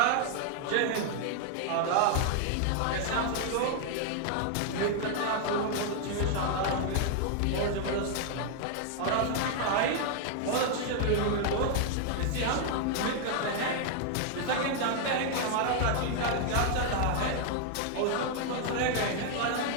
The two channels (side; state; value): both; different; correlation 0.00